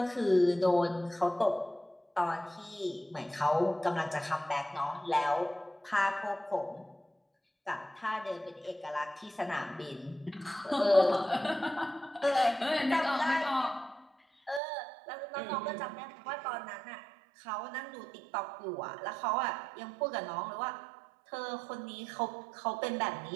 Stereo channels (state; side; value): drops out; left; at 14.6 s